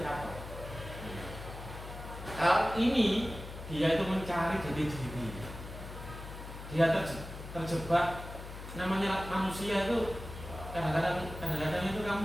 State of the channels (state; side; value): noise; left; hum, 11 dB below the sound